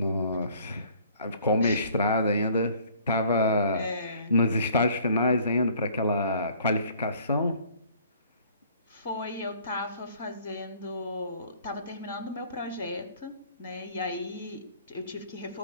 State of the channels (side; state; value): both; inverted; correlation -0.56